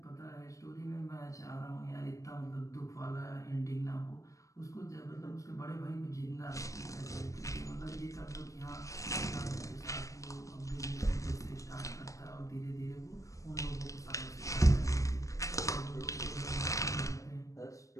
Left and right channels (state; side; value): late; right; 0.16 ms